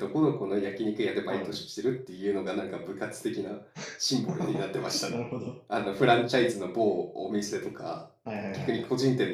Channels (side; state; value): both; identical; correlation 1.00